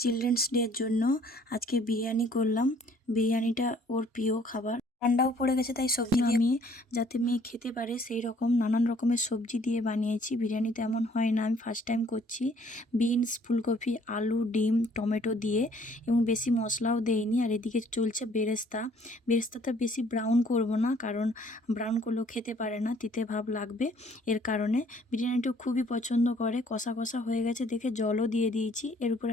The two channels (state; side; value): normal; both; correlation 0.60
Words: চিলড্রেন্স ডের জন্য আজকে বিরিয়ানি করলাম। বিরিয়ানিটা ওর প্রিয় খাবার, ঠান্ডাও পড়ে গেছে তাই সবজি দিয়ে আমি যাতে মেয়ে খেতে পারে সেই রকম নানান রকমের সবজি দিয়ে বানিয়েছি। বিরিয়ানি তেমন হয় না, আমি ফার্স্ট টাইম করছি। বিনস, ফুলকপি, আলু, ডিম, টমেটো দিয়ে, এবং বেশি মশলাও দেইনি। আর এদিকে চলছে বেরেস্তা। বেরেস্তাটা বেশি ব্রাউন করব না, কারণ ব্রাউন করলেও খেতে পারে না, তিতে ভাব লাগবে। এর কারণে বিরিয়ানিটা খুবই পছন্দ করে। কষা কষা হয়ে গেছে দেখে জলও দিয়ে দিয়েছি। এর